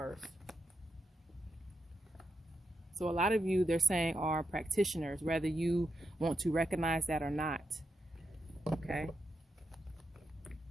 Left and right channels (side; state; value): both; normal; correlation 0.84